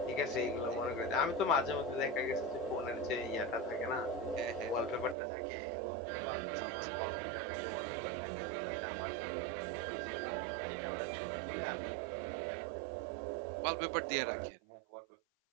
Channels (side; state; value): left; drops out; at 5.2 s